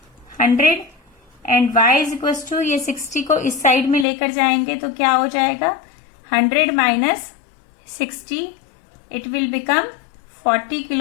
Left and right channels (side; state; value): right; drops out; at 4.0 s